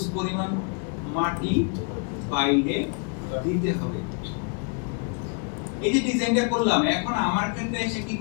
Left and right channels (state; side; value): quieter; right; 38.0 dB